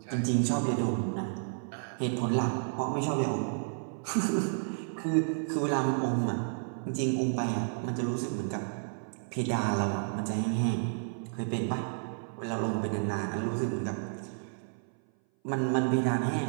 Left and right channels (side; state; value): left; silent; 57 dB below the other